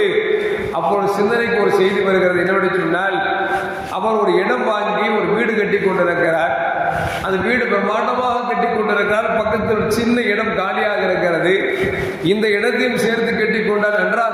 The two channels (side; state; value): both; identical; correlation 1.00